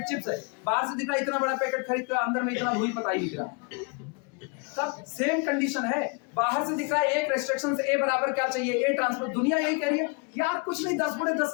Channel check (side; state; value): right; quieter; 33.7 dB